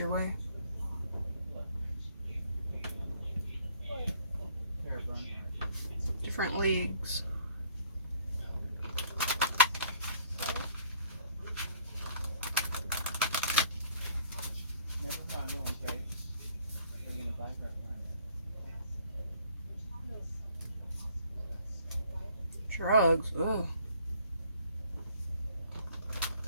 way. Different leagues. Drugs. Ugh.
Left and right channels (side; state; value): both; inverted; correlation -0.59